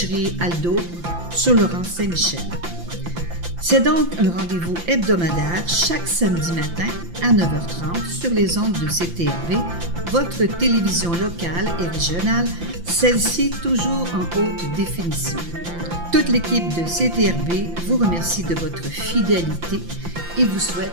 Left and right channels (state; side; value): late; left; 5.8 ms